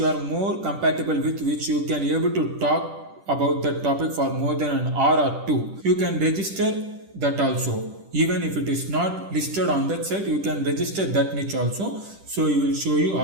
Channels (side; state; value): left; late; 10 ms